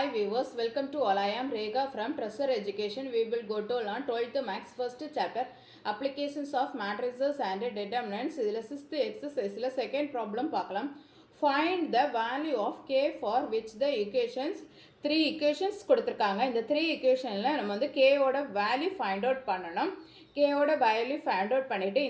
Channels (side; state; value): both; identical; correlation 1.00